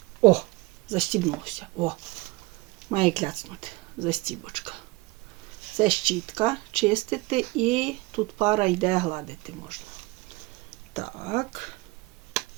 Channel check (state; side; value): quieter; left; 22.4 dB